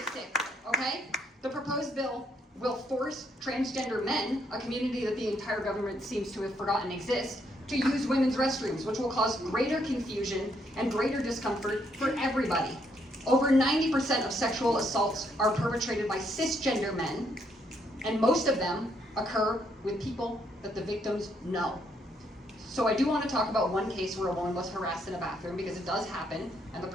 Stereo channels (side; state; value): both; normal; correlation 0.73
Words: okay? The proposed bill will force transgender men, a community that the entire government seems to have forgotten exists, to use women's restrooms, which will cause greater confusion and greater discomfort for everybody. Over 90% of sexual assaults are perpetrated by cisgender men, and most of them occur with people that the victims know. So I do want to talk about one case where a woman was harassed in a bathroom, because it does happen, and the